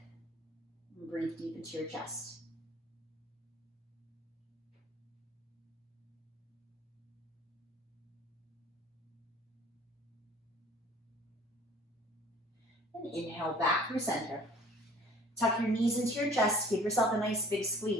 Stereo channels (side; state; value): both; normal; correlation 0.52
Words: And breathe deep into your chest. And inhale back through center. Tuck your knees into your chest. Give yourself a nice big